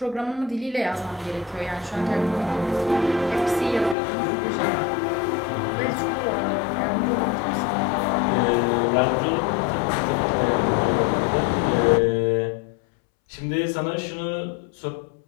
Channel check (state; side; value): drops out; right; at 4.0 s